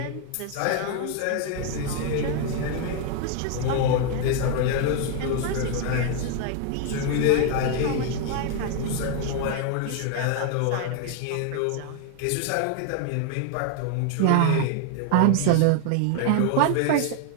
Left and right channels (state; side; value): different; both; correlation 0.00